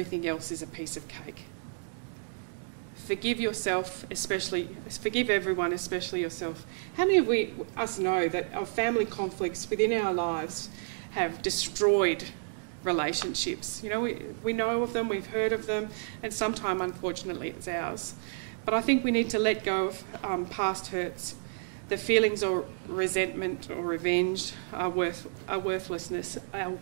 else is a piece of cake. Forgive yourself, forgive everyone, especially yourself. How many of us know that our family conflicts within our lives have destroyed relationships? You know, we know of them, we've heard of them, and sometimes, unfortunately, it's ours. But I think we need to let go of past hurts. The feelings of resentment or revenge are worthless.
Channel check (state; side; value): silent; left; digital silence